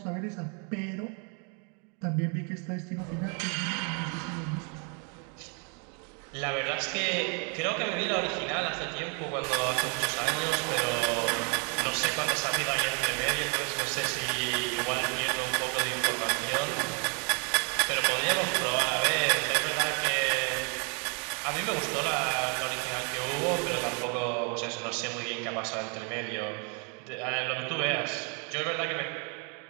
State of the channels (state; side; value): quieter; left; 37.1 dB